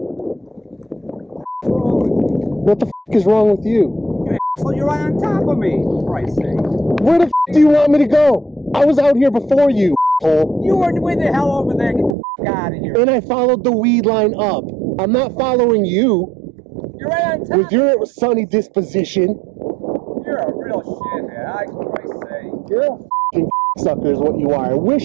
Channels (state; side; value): drops out; left; at 12.2 s